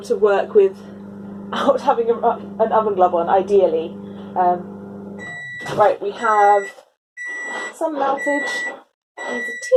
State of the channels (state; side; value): identical; both; correlation 1.00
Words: to work without having an oven glove on, ideally. Right, we have some meltage. It's a